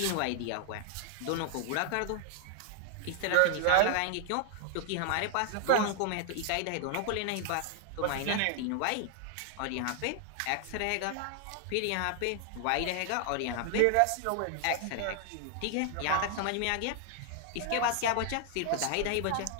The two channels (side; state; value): both; different; correlation 0.00